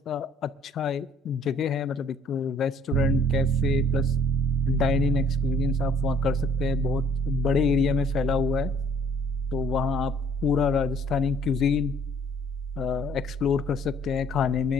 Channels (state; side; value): normal; both; correlation 0.59